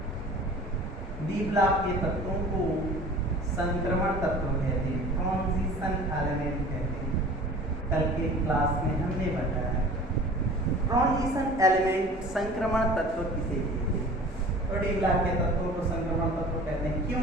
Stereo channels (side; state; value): both; normal; correlation 0.43